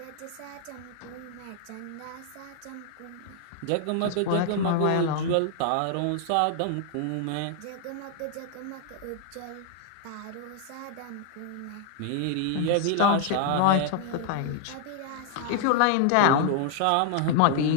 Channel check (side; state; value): both; different; correlation 0.00